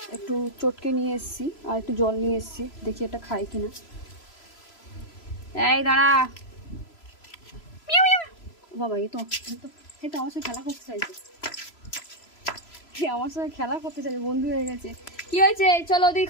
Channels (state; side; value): late; right; 3.0 ms